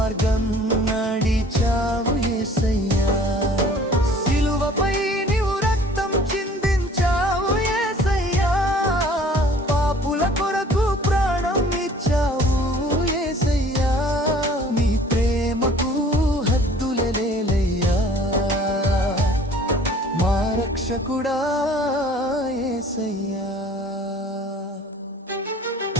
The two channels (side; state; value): both; normal; correlation 0.52